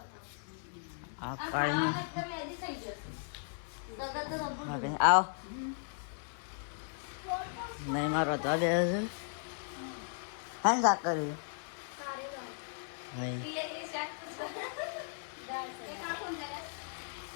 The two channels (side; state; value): right; silent; 54 dB below the other